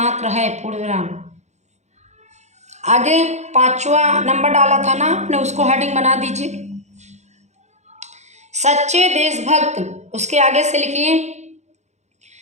है, पूर्ण विराम। आगे 5वां नंबर डाला था ना आपने, उसको हेडिंग बना दीजिए सच्चे देशभक्त। उसके आगे से लिखिए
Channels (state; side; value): late; left; 0.33 ms